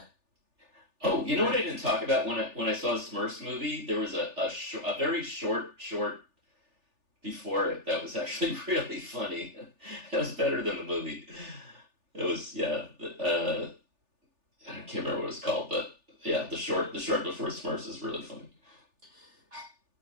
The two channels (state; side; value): late; left; 3.4 ms